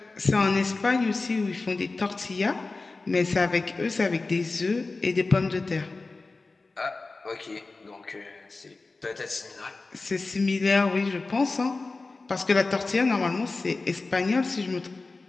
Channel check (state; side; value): quieter; right; 3.6 dB